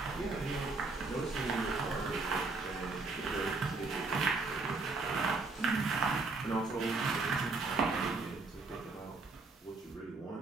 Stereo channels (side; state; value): left; quieter; 3.8 dB